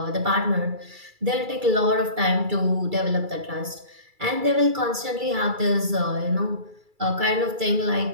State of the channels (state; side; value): late; left; 2.3 ms